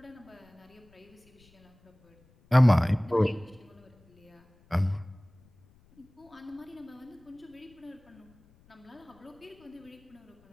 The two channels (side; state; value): left; noise; rumble, 29 dB below the sound